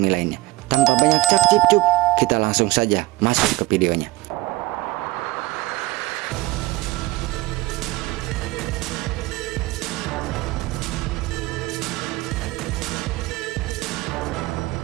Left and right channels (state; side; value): quieter; left; 20.3 dB